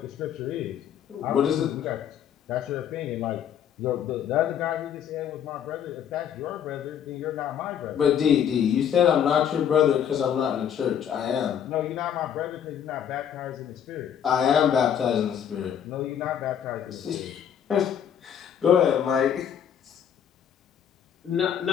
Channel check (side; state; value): right; quieter; 8.9 dB